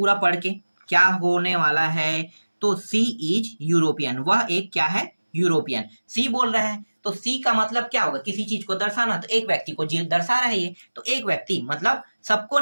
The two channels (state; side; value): inverted; both; correlation -1.00